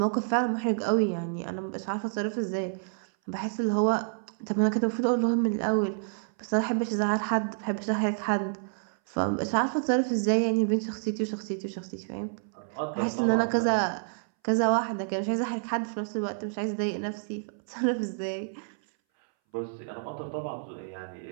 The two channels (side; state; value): left; silent; 59 dB below the other